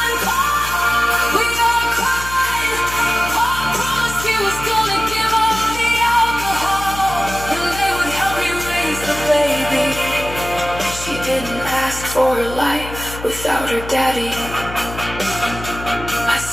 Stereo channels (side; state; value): left; noise; hum, 11 dB below the sound